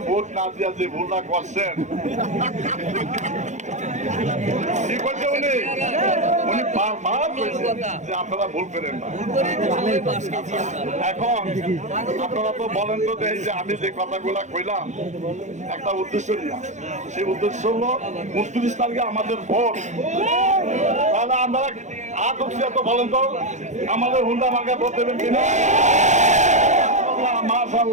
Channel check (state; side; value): late; left; 0.34 ms